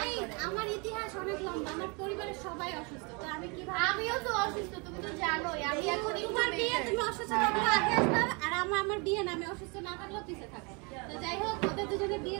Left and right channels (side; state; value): left; quieter; 31.2 dB